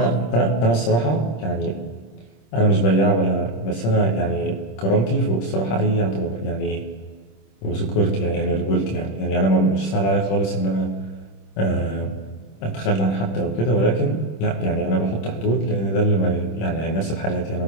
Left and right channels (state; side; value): late; right; 26 ms